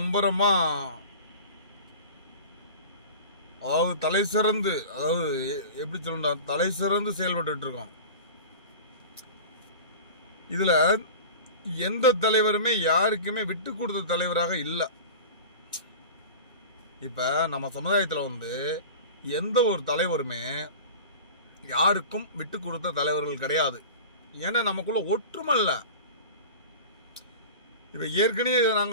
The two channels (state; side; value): inverted; both; correlation -0.35